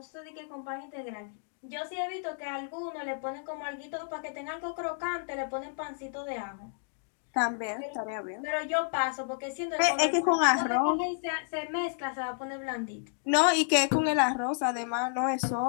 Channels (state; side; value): silent; right; digital silence